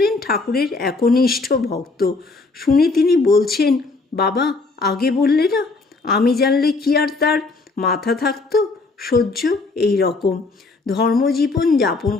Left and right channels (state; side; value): quieter; right; 3.7 dB